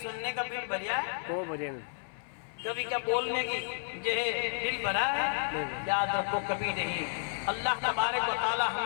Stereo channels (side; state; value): right; silent; 56 dB below the other